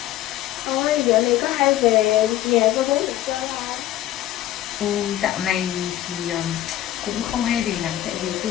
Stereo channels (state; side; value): quieter; right; 13.6 dB